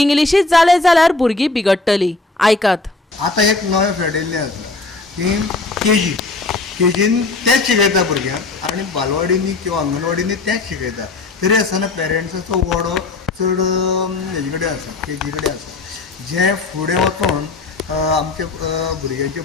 जाले जाल्यार भुरगीं बिगडटलीं. आयकात. आतां एक नवें फेडिल्लें आसा की केजीन तेच शिकयता भुरग्यांक आनी बालवाडींनी किंवा अंगणवाडींनी तेच शिकयता. तरी आसतना पेरंट्साचो वाडो चड हेजे कडेन आसा, केजी कडेन आसा. जे फुडें वचोन आमच्या भुरग्यांचें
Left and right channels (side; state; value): right; quieter; 3.6 dB